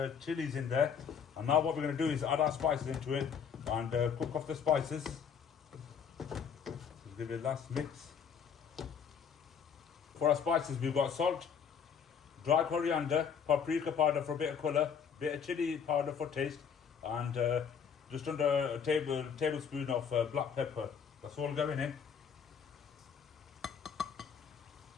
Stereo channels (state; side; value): quieter; right; 7.1 dB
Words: chilies in there. And now what we're going to do is add our spices into it and cook off the spices. Just give it a last mix. For our spices, we've got salt, dry coriander, paprika powder for a bit of colour, bit of chili powder for taste, and just under a tablespoon of black pepper. That's all going in.